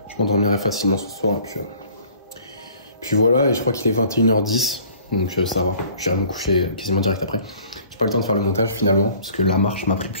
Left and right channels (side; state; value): both; inverted; correlation -0.52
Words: Je m'endormirai facilement ce soir, et puis voilà, et je crois qu'il est 21h10, donc ça va. J'irai me coucher quasiment direct après. J'ai pas le temps de faire le montage finalement, parce que la marche m'a pris